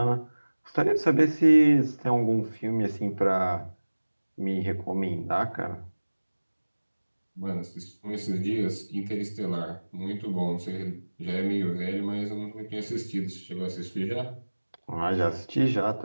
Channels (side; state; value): both; inverted; correlation -1.00